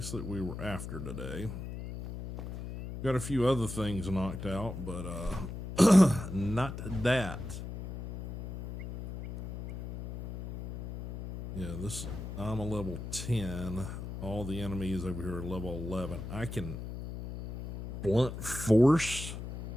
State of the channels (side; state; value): left; noise; hum, 8 dB below the sound